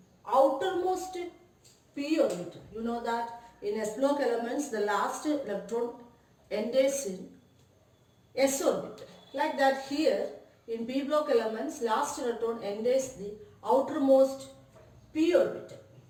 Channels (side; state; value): both; identical; correlation 1.00